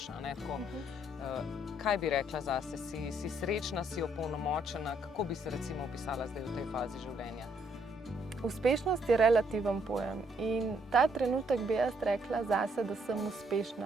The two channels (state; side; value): normal; both; correlation 0.70